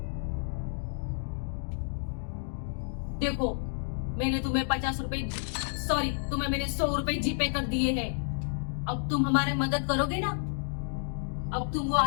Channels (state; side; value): silent; right; digital silence